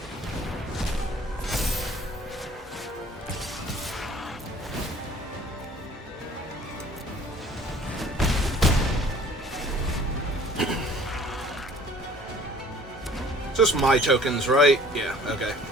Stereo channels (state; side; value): normal; both; correlation 0.52